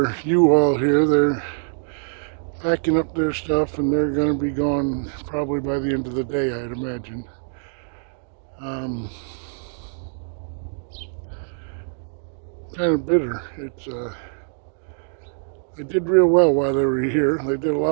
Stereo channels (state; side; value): silent; left; digital silence